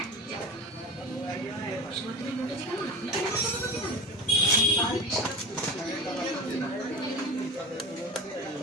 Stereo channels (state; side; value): normal; both; correlation 0.30